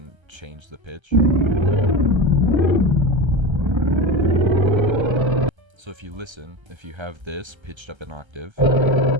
change the pitch. So if you listen, if you have this pitched up an octave,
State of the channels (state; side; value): late; left; 1.3 ms